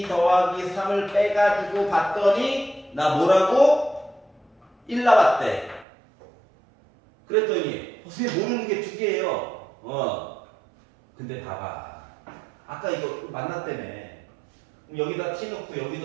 더하기 3을 빼가지고 봤더니 나 뭐라고? 1 나왔대. 그랬더니 선생님 모르는 게 두 개예요. 근데 봐봐. 아까 이거 만났다며. 여기다 t 넣고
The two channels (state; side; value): drops out; left; at 5.9 s